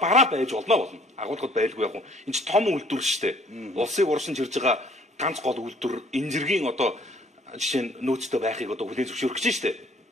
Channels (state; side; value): normal; both; correlation 0.58